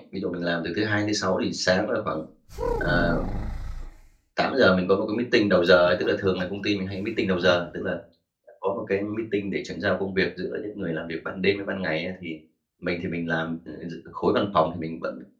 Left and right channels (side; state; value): both; identical; correlation 1.00